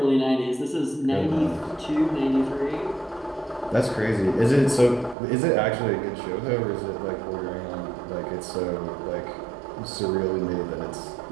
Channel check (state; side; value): drops out; left; at 5.2 s